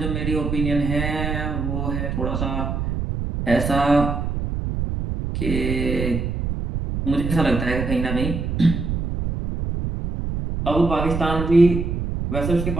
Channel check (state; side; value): noise; right; rumble, 3 dB below the sound